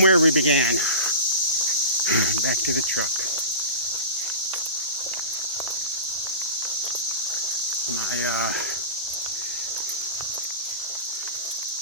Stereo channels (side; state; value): both; inverted; correlation -0.31